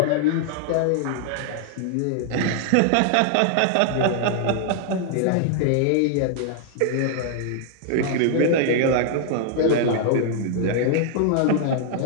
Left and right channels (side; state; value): both; different; correlation 0.00